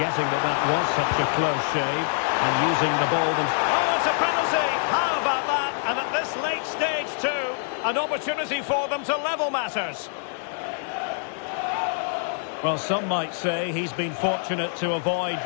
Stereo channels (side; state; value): right; silent; digital silence